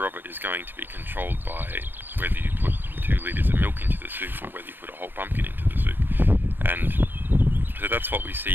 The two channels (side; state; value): left; late; 0.097 ms